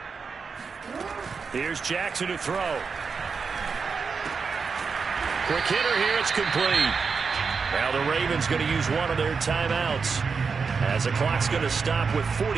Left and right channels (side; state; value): left; quieter; 5.2 dB